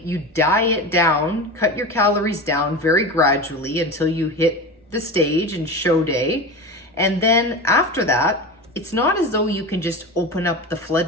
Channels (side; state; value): both; normal; correlation 0.27